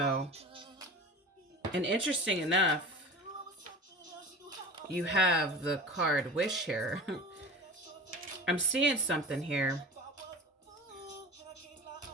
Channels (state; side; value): normal; both; correlation 0.34